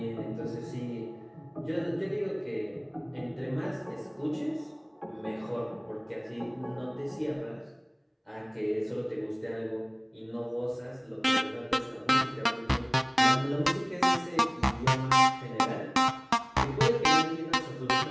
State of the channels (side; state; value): both; identical; correlation 1.00